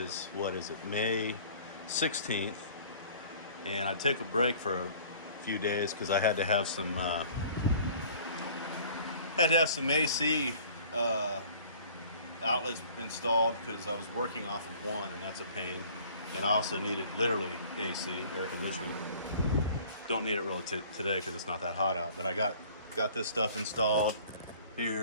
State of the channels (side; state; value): both; inverted; correlation -0.50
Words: May 16th. And I took a break for a few days because I had to have some AC outlets installed because I was working off of one, and that's a pain. And I also needed literally AC, air conditioning. Don't need it really today because it's not that hot out. But I got this stuff installed